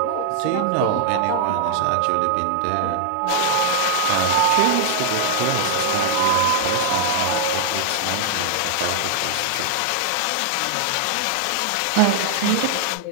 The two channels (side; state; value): both; different; correlation -0.01